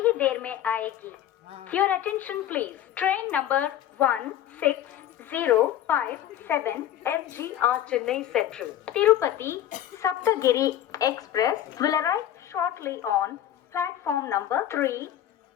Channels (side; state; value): right; quieter; 11.5 dB